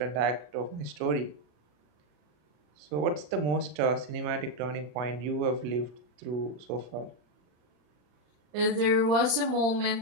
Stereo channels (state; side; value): late; left; 39 ms